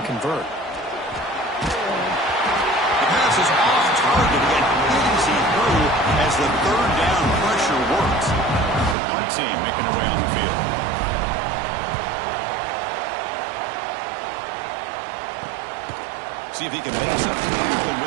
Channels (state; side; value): drops out; left; at 9.0 s